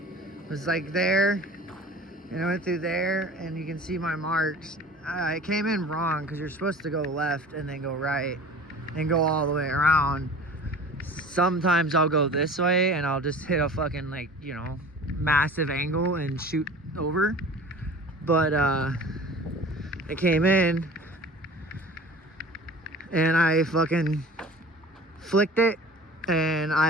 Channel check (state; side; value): normal; both; correlation 0.42